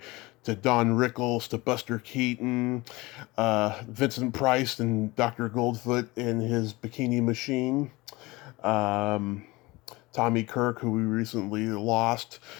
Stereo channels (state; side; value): quieter; right; 22.1 dB